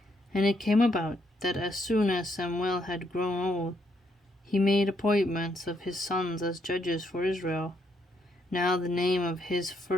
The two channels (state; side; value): normal; both; correlation 0.75